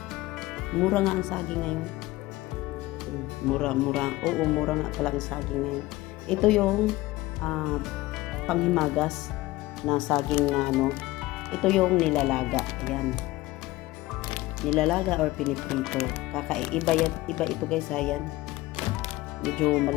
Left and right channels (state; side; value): quieter; right; 18.6 dB